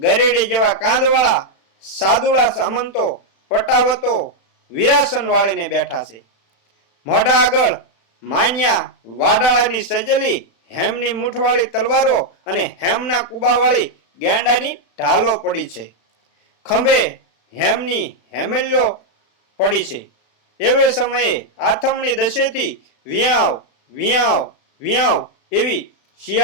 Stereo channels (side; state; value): right; late; 36 ms